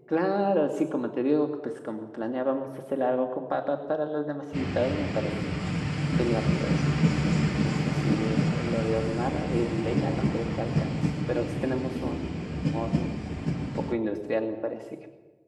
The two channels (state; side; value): identical; both; correlation 1.00